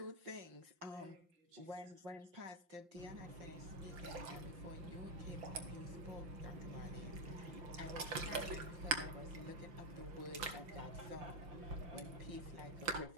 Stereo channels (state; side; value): late; left; 5.8 ms